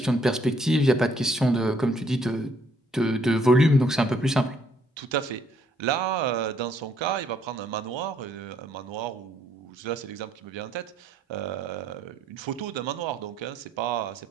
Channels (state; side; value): normal; both; correlation 0.67